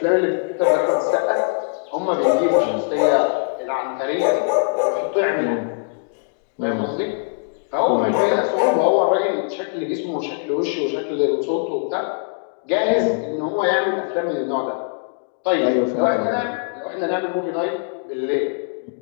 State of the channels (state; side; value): silent; right; digital silence